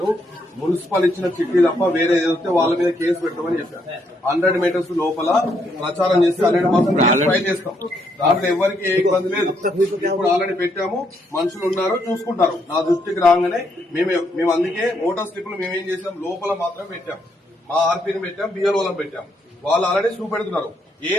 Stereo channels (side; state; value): both; normal; correlation 0.74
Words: మున్సిపల్ ఇచ్చిన చిట్టి తప్ప వేరే ఏదైతే వాళ్ళ మీద కేసు పెట్టమని చెప్పాను. 100 మీటర్స్ లోపల ప్రచారం చేసి 100% ఫైల్ చేస్తాం. దాంట్లో ఎవరికి ఏ ఇబ్బంది లేదు. ఇప్పుడు ఆల్రెడీ పెట్టాము. మనుషులు ఉన్నారు, చూసుకుంటారు. నా దృష్టికి రాగానే మేము అందుకే ఓటర్ స్లిప్లు మేమేం చేసాం, లోపల మాత్రం పెట్టాం. మా ఆర్పీని పెట్టాం, బిఎల్ఓలను పెట్టాం. వాళ్ళు ఆల్రెడీ చూపెడుతున్నారు. ఏ